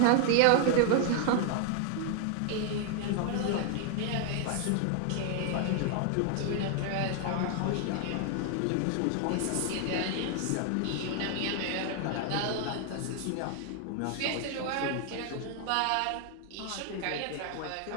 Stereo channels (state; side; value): different; both; correlation 0.00